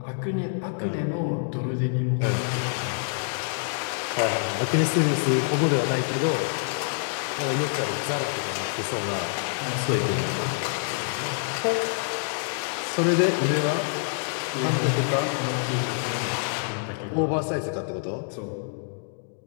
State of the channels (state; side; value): silent; right; digital silence